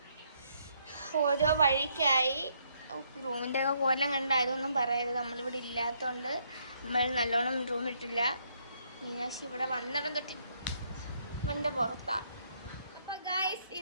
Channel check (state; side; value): inverted; both; correlation -0.71